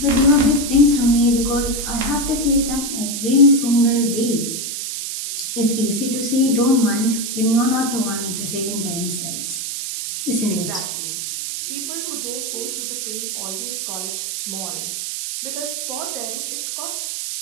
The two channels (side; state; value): right; noise; hiss, 4 dB below the sound